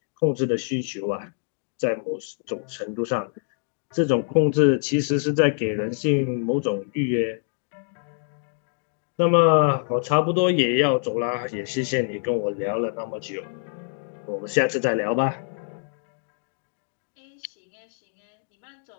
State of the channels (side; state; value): right; silent; 61 dB below the other